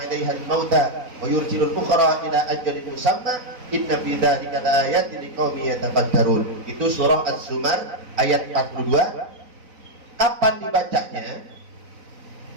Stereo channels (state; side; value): late; left; 4.0 ms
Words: al-mauta wa yursilu al-ukhra ila ajalin musamma inna fi dzalika laayatin liqaumin yatafakkarun. Itu surah Az-Zumar ayat 42. Kapan dibacanya?